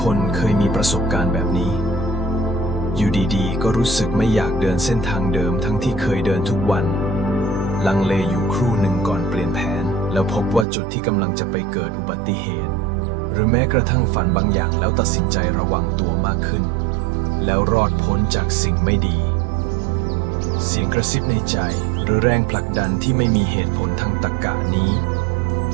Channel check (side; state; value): left; drops out; at 10.7 s